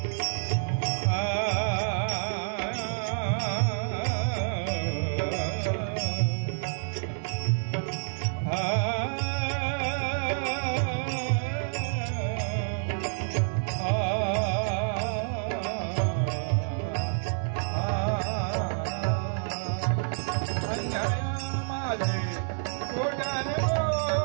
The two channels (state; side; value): silent; left; digital silence